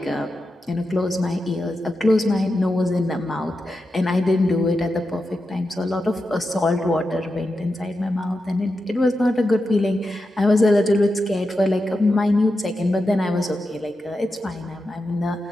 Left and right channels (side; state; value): both; normal; correlation 0.89